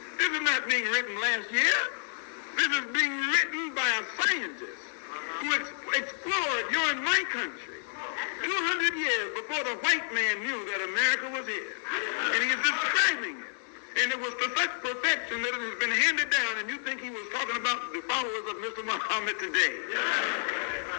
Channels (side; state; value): right; silent; digital silence